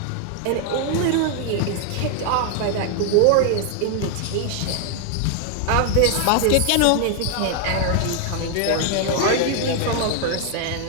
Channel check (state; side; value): different; both; correlation 0.00